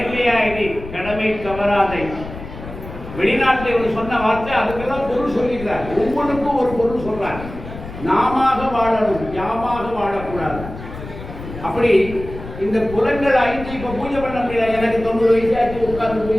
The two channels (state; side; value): noise; left; rumble, 12 dB below the sound